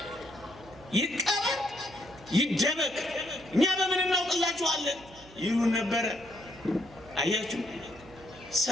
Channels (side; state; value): right; noise; hum, 21 dB below the sound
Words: ይቀበር ይደበቅ፣ እኛ በምን እናውቅላችኋለን ይሉን ነበረ። አያችሁ፣